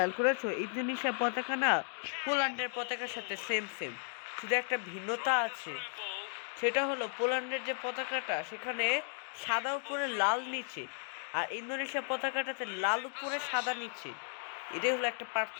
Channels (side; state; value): right; silent; 54 dB below the other